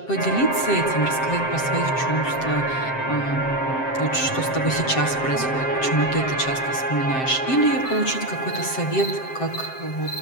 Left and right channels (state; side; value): late; right; 7.6 ms